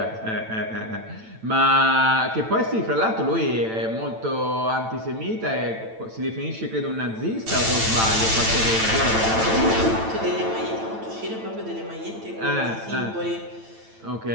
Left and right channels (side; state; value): left; late; 9.0 ms